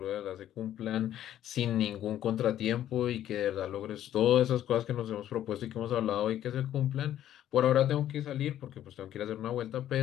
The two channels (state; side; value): quieter; right; 11.8 dB